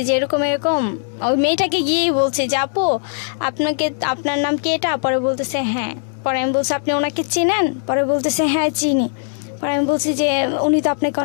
যে এরকম এরকম, ওই মেয়েটাকে গিয়েই বলছি যে আপু আপনার নাম কি এটা? পরে বলতেছে হ্যাঁ। পরে আমি বলছি আপনি ওনাকে চেনেন? পরে বলতেছে হ্যাঁ চিনি। পরে আমি বলছি যে উনি তো আপনাকে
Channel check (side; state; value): right; silent; 66 dB below the other